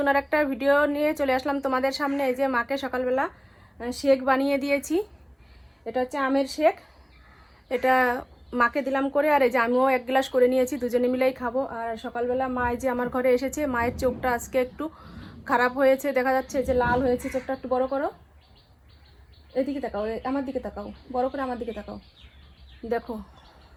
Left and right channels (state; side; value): identical; both; correlation 1.00